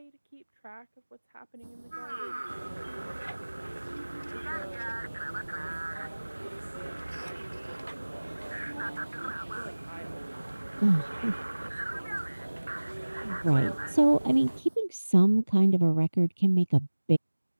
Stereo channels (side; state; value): both; inverted; correlation -1.00